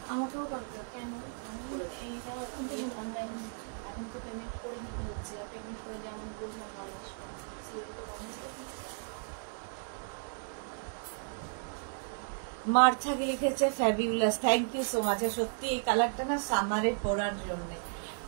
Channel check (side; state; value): left; silent; 55 dB below the other